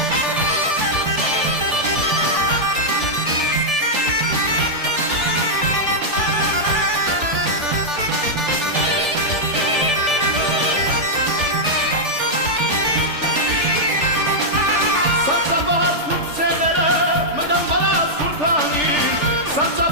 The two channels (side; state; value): left; late; 3.4 ms